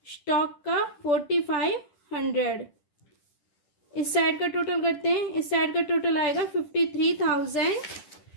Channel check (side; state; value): right; late; 10 ms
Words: स्टॉक का 4500। इस साइड का टोटल करते हैं। इस साइड का टोटल आएगा